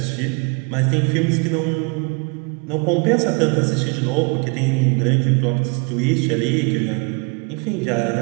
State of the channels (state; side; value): quieter; left; 31.6 dB